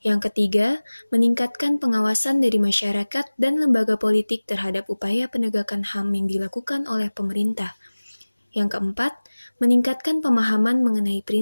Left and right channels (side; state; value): both; inverted; correlation -1.00